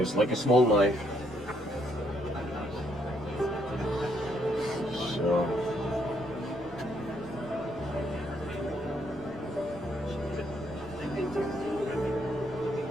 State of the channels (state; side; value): normal; both; correlation 0.72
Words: like a small knife. So